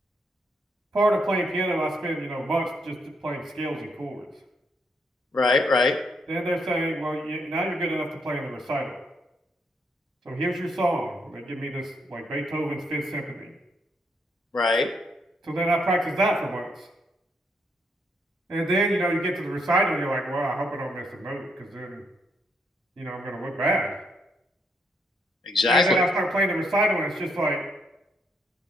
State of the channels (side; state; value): both; normal; correlation 0.76